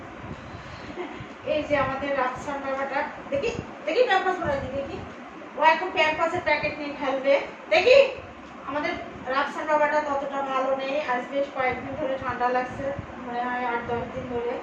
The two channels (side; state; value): both; identical; correlation 1.00